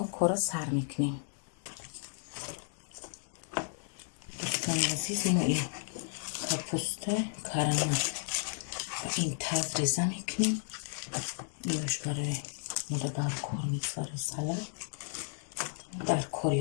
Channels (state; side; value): silent; right; 55 dB below the other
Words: کار سر میکنیم. دوستان عزیز، ما این کپوسته کرم این تاز ریزه میکنیم. اینش برای مادر در کار میگذاره. سلام در کاری